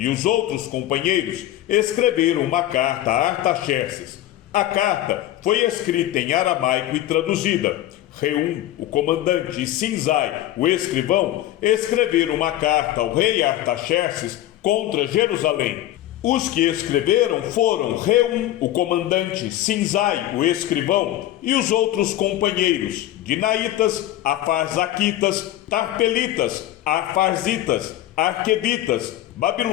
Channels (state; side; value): quieter; right; 13.8 dB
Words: os outros companheiros escreveram uma carta a Artaxerxes. A carta foi escrita em aramaico e traduzida. Reum, o comandante, e Sinzai, o escrivão, escreveram uma carta ao rei Artaxerxes contra Jerusalém. Os que escreveram foram Reum, o comandante, Sinzai, o escrivão, e os outros companheiros, Dinaitas, Afarzaquitas, Tarpelitas, Afarzitas, Arquevitas,